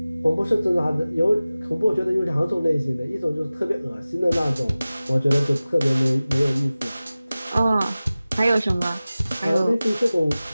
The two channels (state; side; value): inverted; both; correlation -0.97